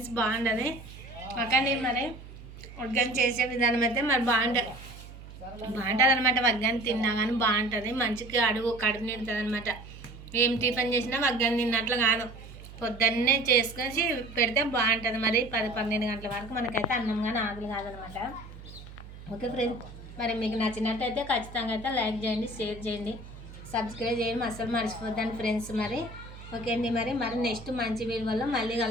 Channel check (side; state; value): right; noise; hum, 15 dB below the sound